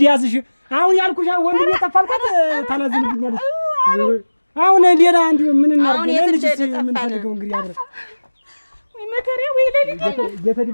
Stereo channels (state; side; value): inverted; both; correlation -1.00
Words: ያዝሽ። አሁን ያልኩሽ ወንድም የጠፋልከት ታላዝንብኛለሽ። አሁን ሌላ እንዲሁ ምን እናድርግ? ልጅ ምን ፈልገው እንግዲህ አብረን ወይ መከሬ ወይ ለሊት